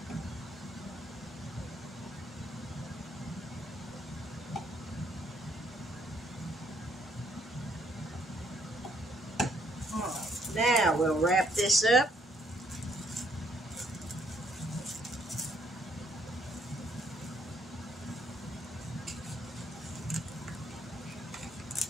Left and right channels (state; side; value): normal; both; correlation 0.69